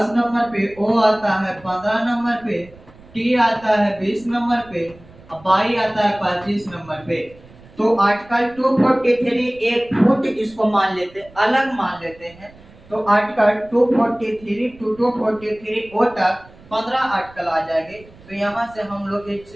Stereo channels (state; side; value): noise; right; rumble, 24 dB below the sound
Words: नंबर पे, ओ आता है 15 नंबर पे, टी आता है 20 नंबर पे, बाई आता है 25 नंबर पे। तो आर्टिकल 243 एक फुट इसको मान लेते, अलग मान लेते हैं। तो आर्टिकल 243 टू 243 ओ तक 15 आर्टिकल आ जाएंगे। तो यहाँ से हम लोग एक